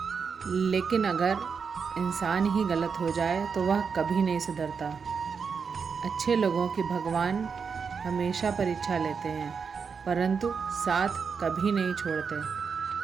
लेकिन अगर इंसान ही गलत हो जाए तो वह कभी नहीं सुधरता। अच्छे लोगों की भगवान हमेशा परीक्षा लेते हैं, परंतु साथ कभी नहीं छोड़ते।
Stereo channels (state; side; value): quieter; left; 5.8 dB